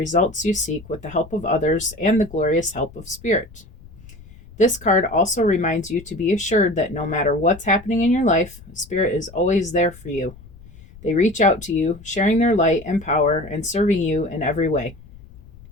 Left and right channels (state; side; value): noise; left; rumble, 20 dB below the sound